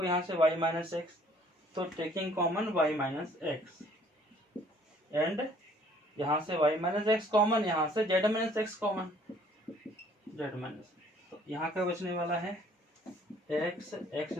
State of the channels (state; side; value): normal; both; correlation 0.58